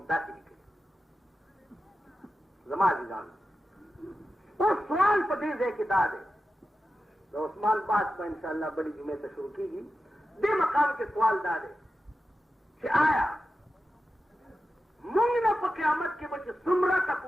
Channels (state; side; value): normal; both; correlation 0.92